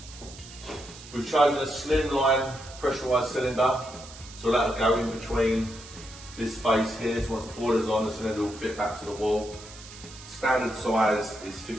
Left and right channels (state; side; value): noise; right; hiss, 17 dB below the sound